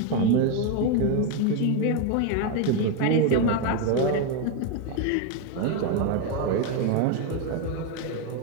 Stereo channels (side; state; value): both; different; correlation 0.02